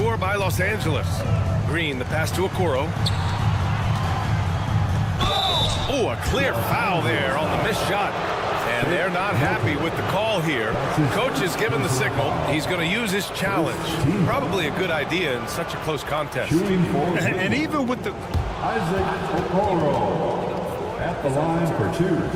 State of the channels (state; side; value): identical; both; correlation 1.00